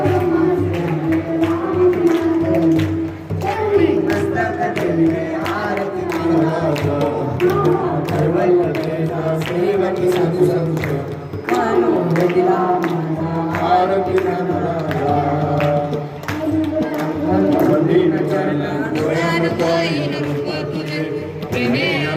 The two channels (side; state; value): both; identical; correlation 1.00